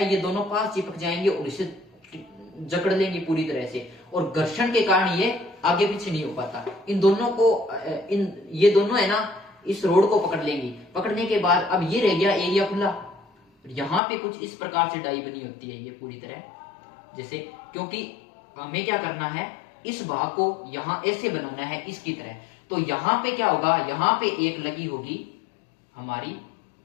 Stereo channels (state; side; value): drops out; right; at 14.0 s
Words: दोनों पास चिपक जाएंगे और इसे जकड़ लेंगे पूरी तरह से, और घर्षण के कारण ये आगे पीछे नहीं हो पाता। इन दोनों को ये दोनों है ना, इस रोड को पकड़ लेंगी। पकड़ने के बाद अब ये रह गया एरिया खुला। यहां पे कुछ इस प्रकार से डाई बनी होती है, ये पूरी तरह जैसे, क्योंकि हमें क्या करना है, इस भाग को यहां ऐसे बनाना है इसकी तरह। तो यहां पे क्या होगा, यहां पे एक लगी होगी हमारी